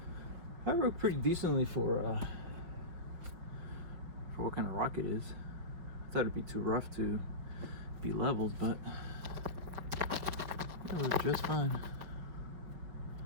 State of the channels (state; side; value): late; left; 5.3 ms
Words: That worked pretty decently for what kind of rock it is. I thought it'd be too rough to be leveled, but it worked just fine.